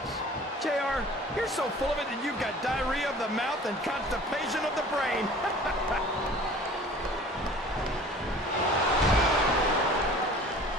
JR, you're so full of it that you've got diarrhea of the mouth and constipation of the brain.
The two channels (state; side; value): normal; both; correlation 0.46